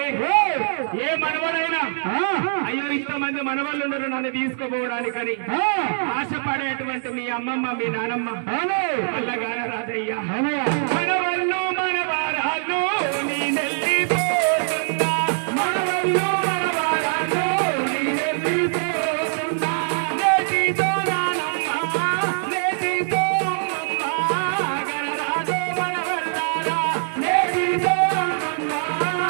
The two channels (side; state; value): left; silent; 61 dB below the other